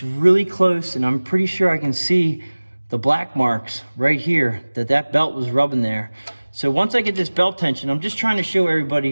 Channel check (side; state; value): both; inverted; correlation -1.00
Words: really close, and I'm pretty sure I can see the black marks right here that belt was rubbing there. So once I get this belt tension, I'm just trying to show